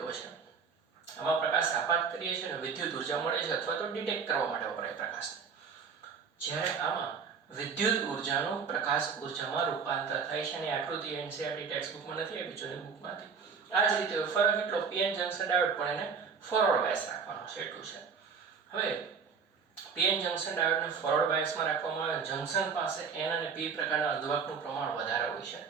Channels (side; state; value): left; quieter; 6.0 dB